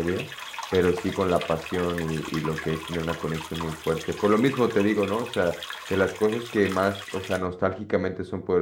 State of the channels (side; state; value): both; identical; correlation 1.00